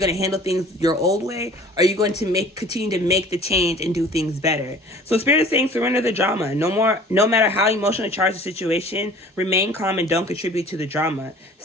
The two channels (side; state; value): both; normal; correlation 0.48